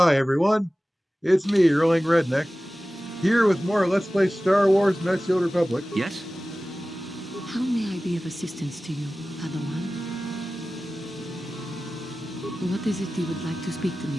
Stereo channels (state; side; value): normal; both; correlation 0.96